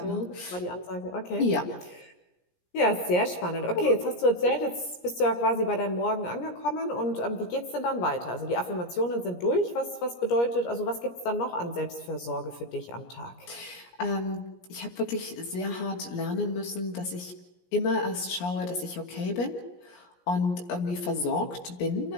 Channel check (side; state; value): right; late; 17 ms